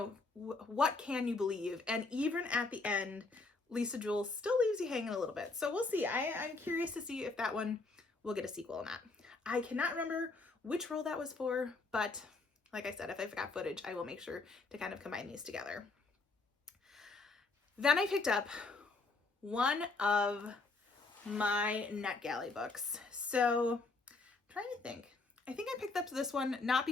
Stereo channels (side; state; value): right; quieter; 3.7 dB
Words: what can you believe? And even at the end, Lisa Jewell still leaves you hanging a little bit. So we'll see. I'm curious to see if that one will get a sequel or not. I cannot remember which role that was for, but like I said, if I've got footage, I will make sure to kind of combine these together. Then I picked up one of my Netgalley books. So I'm trying to think. I think I picked up this one not